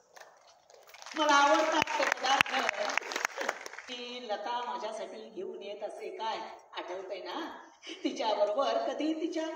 मला आवडतात ते पदार्थ की लता माझ्यासाठी घेऊन येत असे. काय आठवतंय ना, तिच्या बरोबर कधी तिच्या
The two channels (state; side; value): identical; both; correlation 1.00